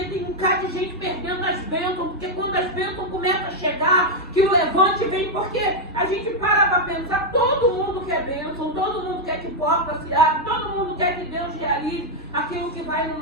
Tem um bocado de gente perdendo as bênçãos, porque quando as bênçãos começam a chegar, que o levante vem, porque a gente para pensar, todo mundo quer bênção, todo mundo quer que porta se abra, todo mundo quer que Deus realize aquilo que vai no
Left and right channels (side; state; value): both; normal; correlation 0.00